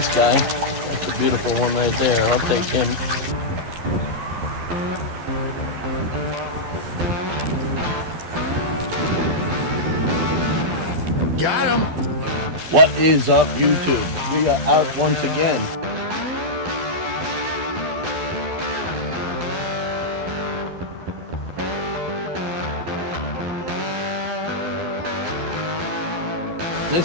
guy. That's a beautiful one right there. I'll take him. Got him. What is up, YouTube? We are out once again.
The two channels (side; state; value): left; late; 11 ms